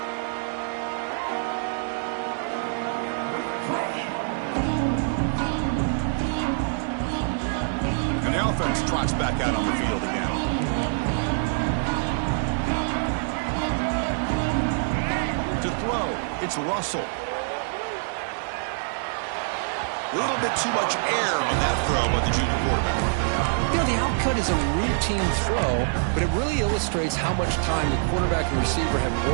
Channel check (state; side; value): silent; left; digital silence